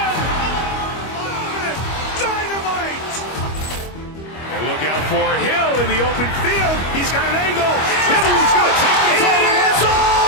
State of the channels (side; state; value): right; late; 25 ms